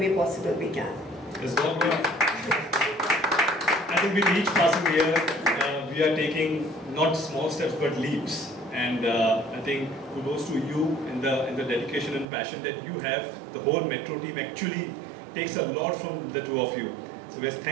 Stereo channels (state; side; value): drops out; left; at 12.2 s